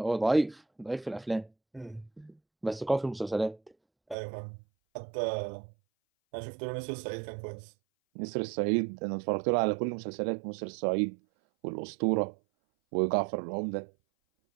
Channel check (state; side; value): drops out; left; at 4.2 s